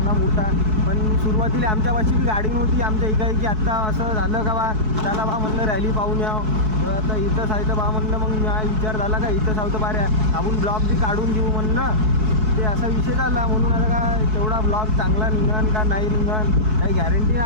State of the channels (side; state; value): left; late; 4.6 ms